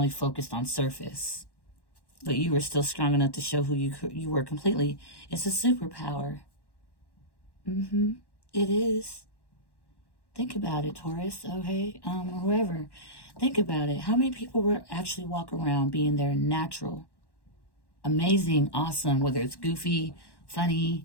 focused on surface. But you were still strong enough to show who you were completely. It's a superpower. It is. Think about it, Taurus, okay? Or whoever. Think about it. How many people will actually walk around being their natural, amazing, awesome, whether it's goofy, funny,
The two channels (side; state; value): right; late; 1.1 ms